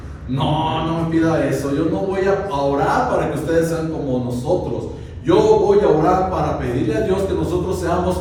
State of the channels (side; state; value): both; identical; correlation 1.00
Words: no me pida eso, yo no voy a orar para que ustedes sean como nosotros, yo voy a orar para pedirle a Dios que nosotros seamos